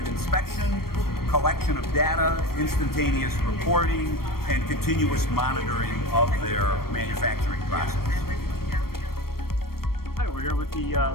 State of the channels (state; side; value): late; right; 0.94 ms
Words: inspection, collection of data, instantaneous reporting, and continuous monitoring of their manufacturing process. Hi, we're here with the